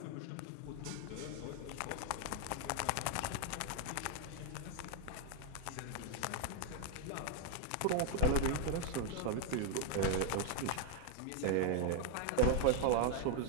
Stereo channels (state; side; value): different; both; correlation 0.01